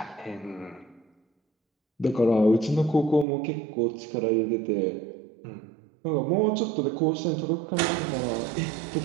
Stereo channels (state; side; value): drops out; left; at 3.2 s